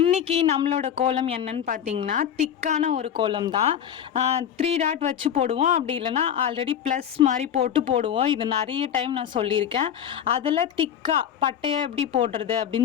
நம்மளோட கோலம் என்னன்னு பார்த்தீங்கன்னா திக்கான ஒரு கோலம் தான். 3 டாட் வச்சு போடுவோம், அப்படி இல்லைனா ஆல்ரெடி ப்ளஸ் மாதிரி போடுவோம். இது நிறைய டைம் நான் சொல்லியிருக்கேன். அதில் திக்காக பட்டையை எப்படி போடுறது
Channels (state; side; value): quieter; right; 9.3 dB